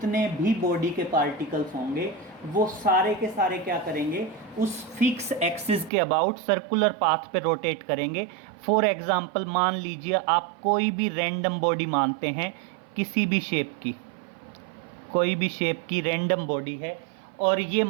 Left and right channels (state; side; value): drops out; left; at 5.9 s